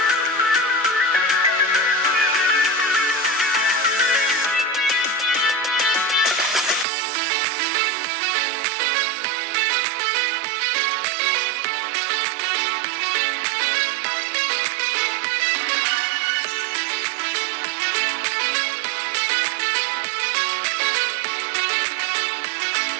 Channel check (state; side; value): drops out; left; at 6.9 s